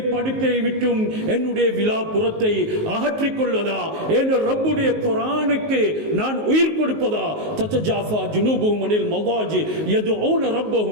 படுக்கையை விட்டும் என்னுடைய விலாப்புறத்தை அகற்றிக் கொள்வதா, என்ற ரப்புடைய குர்ஆனுக்கு நான் உயிர் கொடுப்பதா. தத்தஜாஃபா ஜுனூபுஹும் அனில் மவாஜி யதுஊன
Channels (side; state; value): left; late; 19 ms